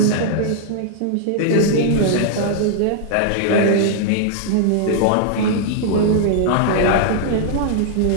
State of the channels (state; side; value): different; both; correlation -0.01